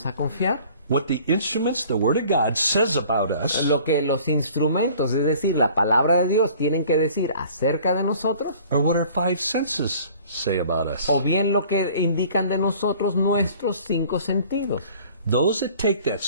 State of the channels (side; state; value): both; inverted; correlation -0.51